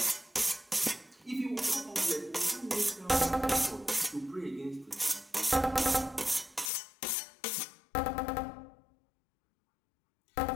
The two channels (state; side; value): drops out; right; at 6.7 s